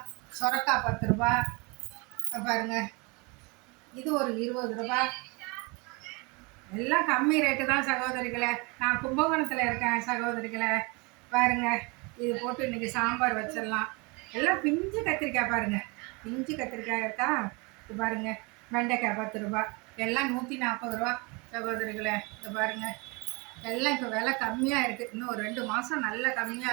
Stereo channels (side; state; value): left; quieter; 28.6 dB